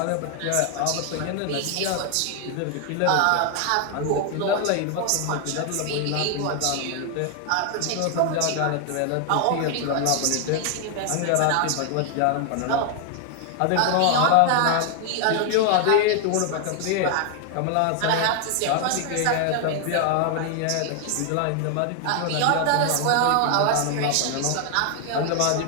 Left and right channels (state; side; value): different; both; correlation 0.00